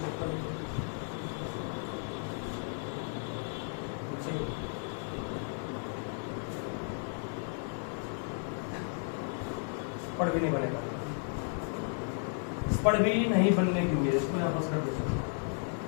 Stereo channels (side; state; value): right; silent; 55 dB below the other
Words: पढ़ भी नहीं बनेगा, इस पढ़ भी नहीं बनने की उम्मीद। इसको यहाँ पर